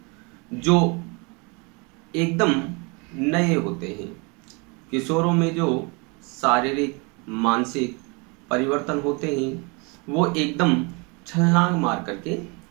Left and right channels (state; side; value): quieter; left; 30.5 dB